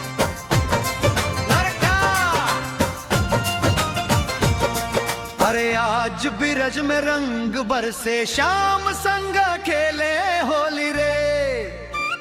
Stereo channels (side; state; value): both; identical; correlation 1.00